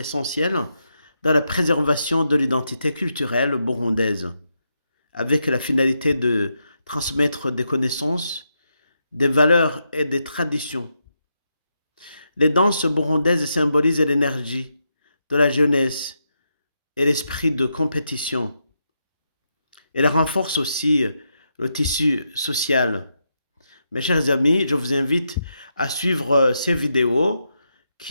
dans la préservation de l'identité culturelle burundaise, avec la finalité de transmettre des connaissances, des valeurs et des traditions. Les danses burundaises symbolisent l'énergie de la jeunesse et l'esprit de compétition. Elles renforcent aussi le tissu social. Mes chers amis, je vous invite à suivre ces vidéos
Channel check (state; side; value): inverted; both; correlation -0.83